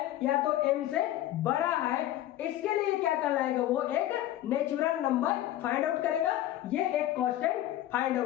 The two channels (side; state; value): right; quieter; 13.7 dB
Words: या तो m से बड़ा है, इसके लिए क्या कहलाएगा, वो एक नेचुरल नंबर फाइंड आउट करेगा, ये एक कांस्टेंट फाइंड